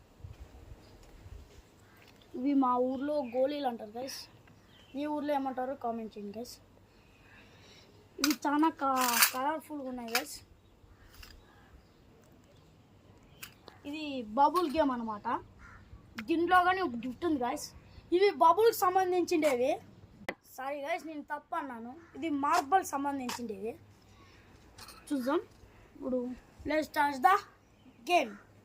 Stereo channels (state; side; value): identical; both; correlation 1.00